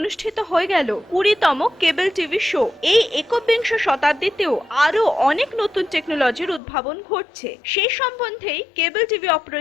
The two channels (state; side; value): drops out; right; at 6.6 s